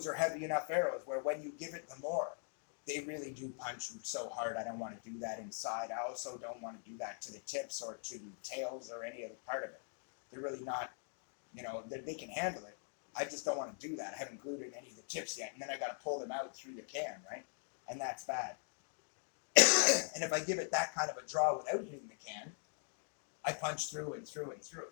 are heavy enough arrows where when you give it the more, they really do punch so hard. I don't want to do that inside. I also don't want to do that to the tips or to the tails or any other part of it. They're really not, they can handle it. I just don't want to do that. I haven't glued in any of the tips yet, and then I got to pull them out through the can, right? And that's bad. And if I give it that kind of a draw without hitting the can, I punch through and through and through.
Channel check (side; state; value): right; silent; 50 dB below the other